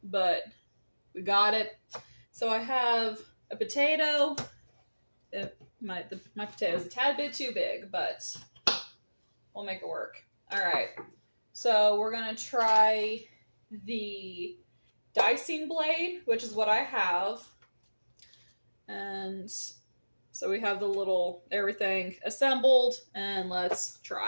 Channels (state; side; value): inverted; both; correlation -1.00